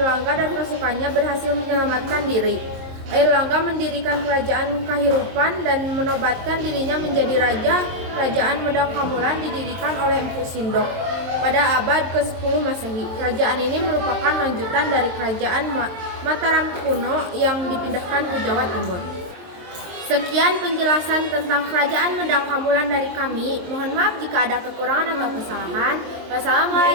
dan pasukannya berhasil menyelamatkan diri. Airlangga mendirikan kerajaan Kahirupan dan menobatkan dirinya menjadi raja. Kerajaan Medang Kamulan didirikan oleh Empu Sindok pada abad ke-10 Masehi. Kerajaan ini merupakan lanjutan dari kerajaan Mataram kuno yang dipindahkan ke Jawa Timur. Sekian penjelasan tentang kerajaan Medang Kamulan dari kami. Mohon maaf jika ada kekurangan atau kesalahan.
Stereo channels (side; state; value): left; late; 23 ms